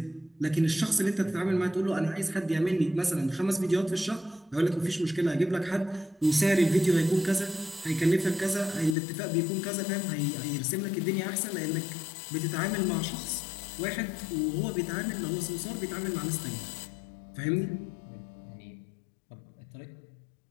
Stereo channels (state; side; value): drops out; right; at 9.0 s